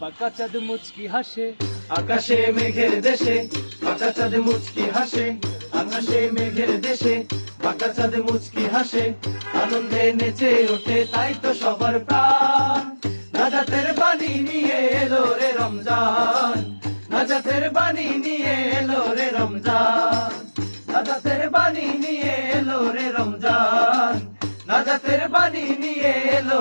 বাঁকা চাঁদ মুচকি হাসে। আকাশে মেঘের দেশে বাঁকা চাঁদ মুচকি হাসে। আকাশে মেঘের দেশে বাঁকা চাঁদ মুচকি হাসে। আনন্দে নেচে ওঠে তাই তো সবার প্রাণ। নাজাতের বাণী নিয়ে এলো রে রমজান। নাজাতের বাণী নিয়ে এলো রে রমজান। নাজাতের বাণী নিয়ে এলো রে রমজান। নাজাতের বাণী নিয়ে এলো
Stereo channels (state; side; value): inverted; both; correlation -1.00